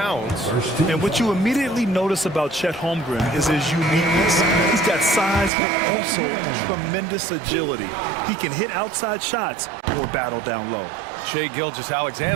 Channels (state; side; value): drops out; left; at 5.5 s